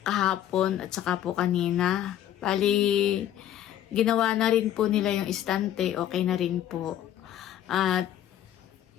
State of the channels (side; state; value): right; quieter; 11.5 dB